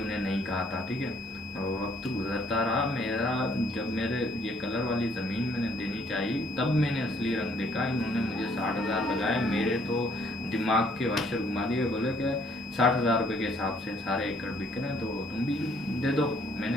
उन्हें नहीं कहा था, ठीक है। वक्त गुजरता रहा मेरा, जब मेरे ये कलर वाली ज़मीन मैंने देनी चाहिए तब मैंने असली रंग देखा। इन्होंने मुझे 60 हज़ार लगाए, मेरे तो दिमाग के वाशर घुमा दिए। बोले कि 60 हज़ार रुपये के हिसाब से सारे एकड़ बिक रहे हैं तो तुम भी दे दो।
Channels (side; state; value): both; normal; correlation 0.65